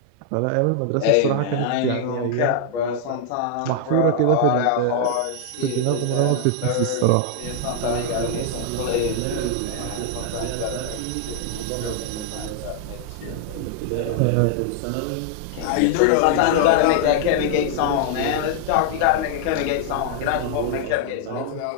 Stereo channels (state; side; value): different; both; correlation 0.00